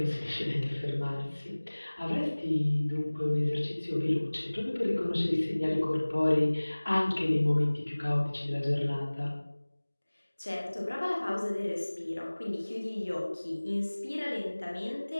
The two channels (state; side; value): inverted; both; correlation -1.00